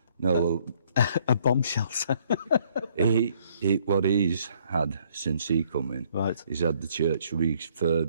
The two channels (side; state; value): both; inverted; correlation -0.65